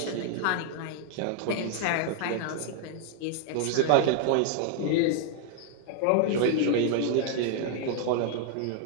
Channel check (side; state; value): both; different; correlation 0.00